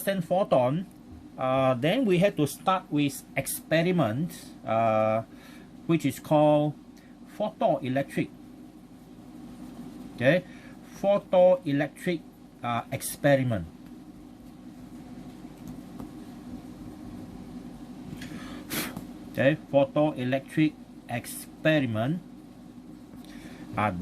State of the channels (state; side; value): identical; both; correlation 1.00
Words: photon, then we have to start with experiment, which is called photoelectric. Okay, photoelectric experiment. Okay, photoelectric experiment.